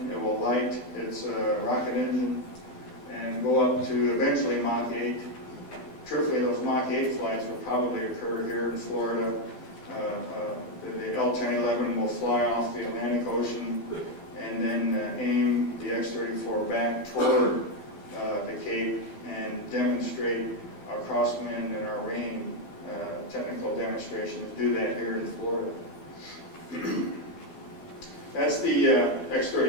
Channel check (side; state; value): right; late; 12 ms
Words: It will light its rocket engine and go up to eventually Mach 8. Truthfully, those Mach 8 flights will probably occur here in Florida. The L-1011 will fly off the Atlantic Ocean and then aim the X-34 back toward the Cape and demonstrate our crosswind and our rain technical demonstrations. Do that here in Florida. That's the